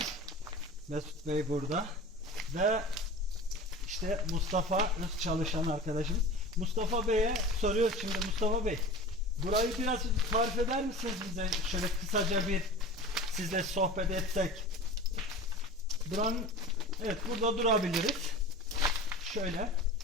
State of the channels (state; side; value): normal; both; correlation 0.35